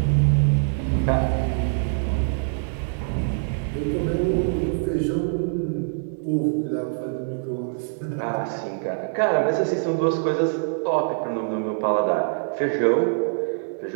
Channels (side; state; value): left; silent; 63 dB below the other